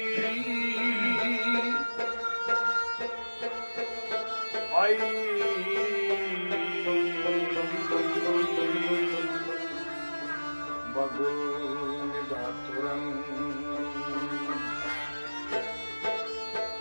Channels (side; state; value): both; inverted; correlation -1.00